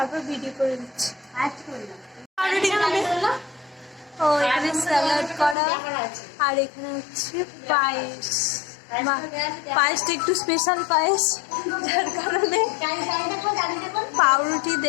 ভিডিও করে দিচ্ছি। ও এখানে স্যালাড করা, আর এখানে হচ্ছে পায়েস। পায়েসটা একটু স্পেশাল পায়েস, যার কারণে পাউরুটি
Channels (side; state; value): right; drops out; at 5.6 s